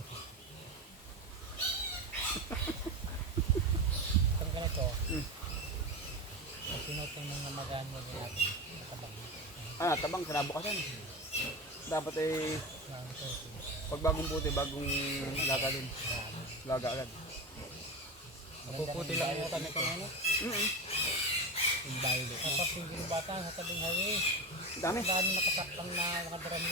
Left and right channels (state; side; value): normal; both; correlation 0.23